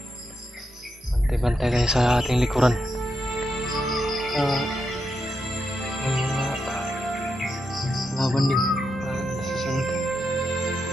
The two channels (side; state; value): both; normal; correlation 0.84